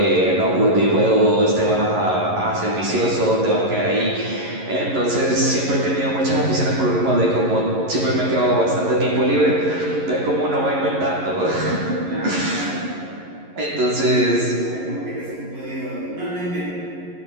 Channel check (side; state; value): left; late; 11 ms